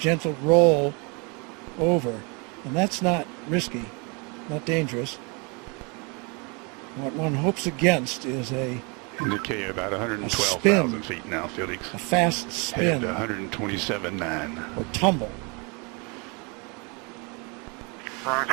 roll over. And that's not risky, not dangerous. What one hopes against is a indicate about 112,000 feet now, Felix. A fast spin. Headed to 127.9. Or tumble.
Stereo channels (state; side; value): quieter; left; 31.9 dB